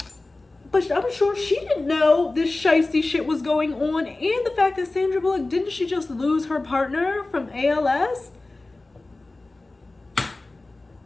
but I'm sure she didn't know this shiesty shit was going on. And the fact that Sandra Bullock, didn't she just lose her partner from ALS?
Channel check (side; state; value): right; quieter; 3.1 dB